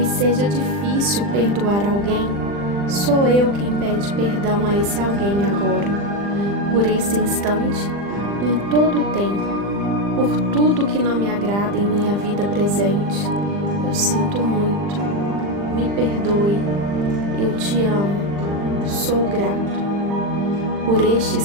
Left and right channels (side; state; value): left; late; 40 ms